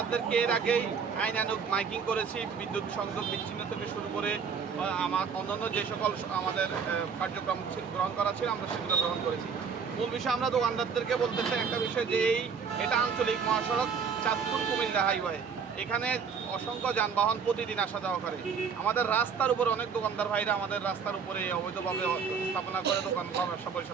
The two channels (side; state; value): left; quieter; 6.2 dB